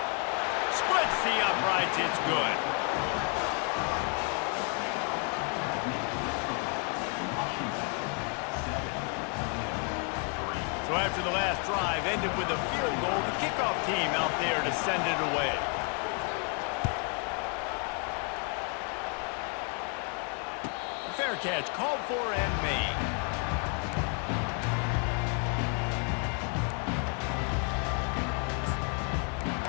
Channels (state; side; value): quieter; right; 39.5 dB